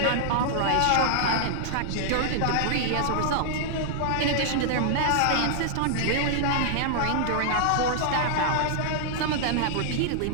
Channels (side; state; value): both; different; correlation -0.01